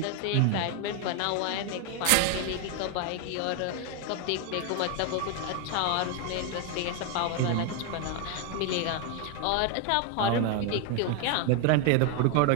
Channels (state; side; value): different; both; correlation 0.01